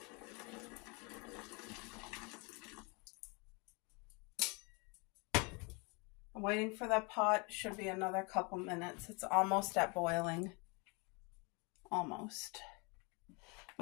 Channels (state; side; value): quieter; right; 30.6 dB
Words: I'm waiting for that pot. Should be another couple minutes. It's almost at boiling. Almost.